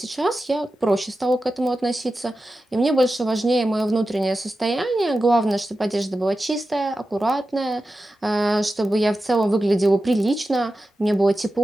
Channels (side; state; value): both; normal; correlation 0.92